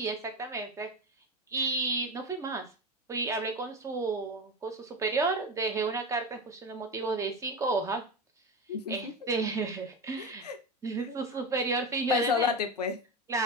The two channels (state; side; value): normal; both; correlation 0.21